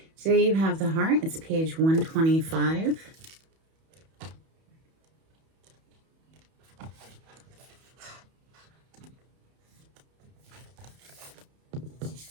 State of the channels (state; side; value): late; left; 31 ms